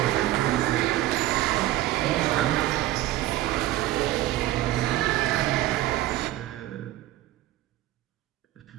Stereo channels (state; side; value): quieter; left; 15.4 dB